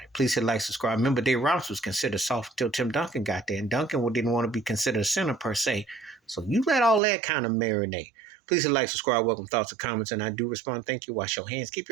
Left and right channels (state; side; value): drops out; left; at 7.0 s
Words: Please hit like, subscribe. Remember, Dave Robinson was considered soft until Tim Duncan got there, and Duncan didn't want to be considered a center per se. So you let all that kind of marinate. Please hit like, subscribe, welcome thoughts and comments, and I do respond. Thank you. Wash your hands. Keep